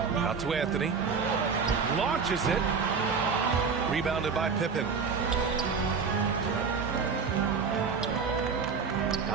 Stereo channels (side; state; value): left; quieter; 5.6 dB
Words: Out to Anthony. Launches it. Rebounded by Pippen.